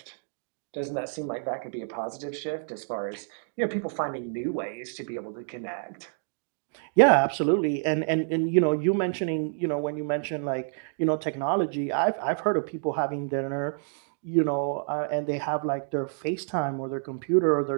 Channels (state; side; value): silent; left; digital silence